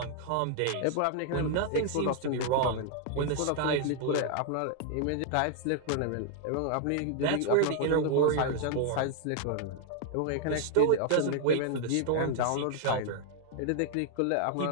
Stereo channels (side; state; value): both; different; correlation -0.01